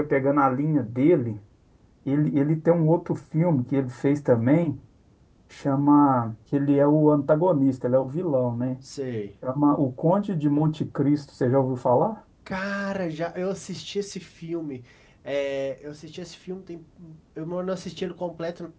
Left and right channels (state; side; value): identical; both; correlation 1.00